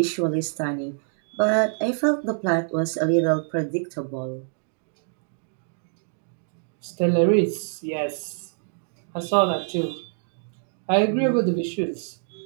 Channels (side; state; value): left; silent; digital silence